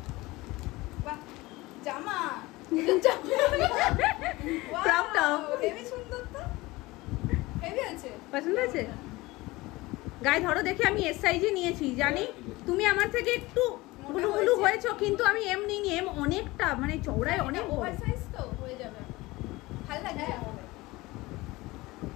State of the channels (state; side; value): quieter; right; 20.7 dB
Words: জামা পছন্দ আছে? গায়ে ধরো দেখে, আমি এস সাইজে নিয়েছি জানি। তুমি আমার থেকে একটু গুলু গুলু হয়েছো, কিন্তু আমি এম নিইনি, এম অনেকটা মানে চওড়ায় অনেক ওভার সাইজ তো হয়ে যাবে, ভালো লাগবে,